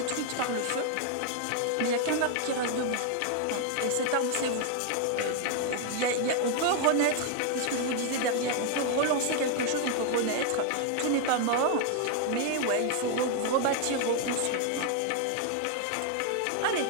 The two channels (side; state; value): both; different; correlation 0.00